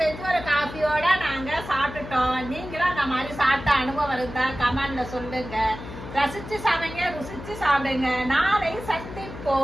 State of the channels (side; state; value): left; noise; hum, 12 dB below the sound